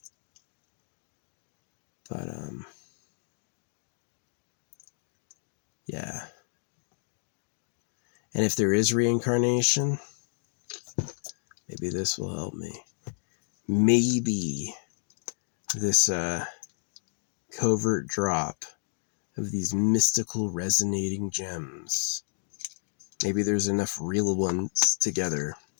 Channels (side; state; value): right; silent; digital silence